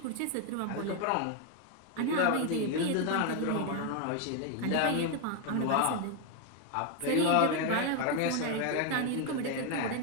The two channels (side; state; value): both; different; correlation 0.01